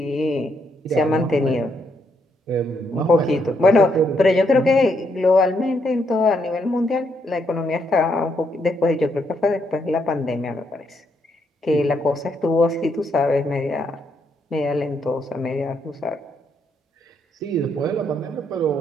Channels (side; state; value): both; normal; correlation 0.76